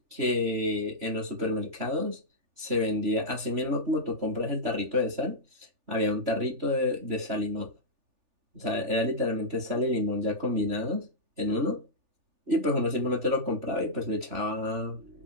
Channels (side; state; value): left; late; 3.4 ms